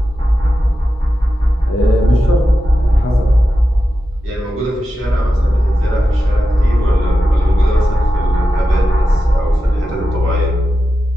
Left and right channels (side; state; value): both; normal; correlation 0.91